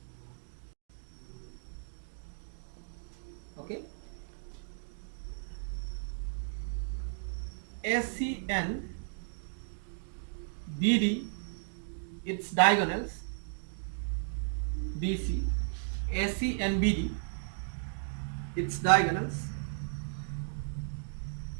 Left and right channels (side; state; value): left; silent; digital silence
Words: okay, AC and BD its diagonals, BC, AC and BD its diagonals